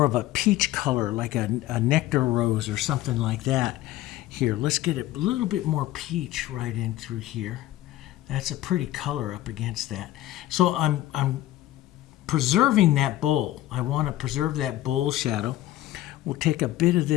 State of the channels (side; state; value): right; quieter; 15.0 dB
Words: of a peach color, like a nectar rose or something like that. Here, let's get a little bit more peach right in through here. That's a pretty color up against that. So I'm preserving that bowl. I want to preserve that bowl shadow. We'll take a bit of